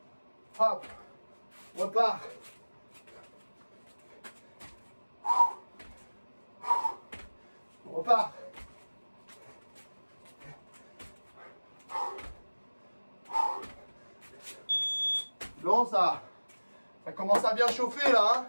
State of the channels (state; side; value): inverted; both; correlation -1.00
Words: Hop. On repart. On repart. Bon, ça commence à bien chauffer là,